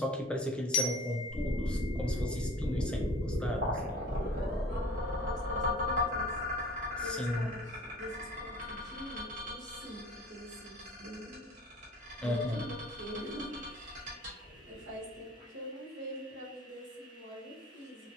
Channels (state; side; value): normal; both; correlation 0.46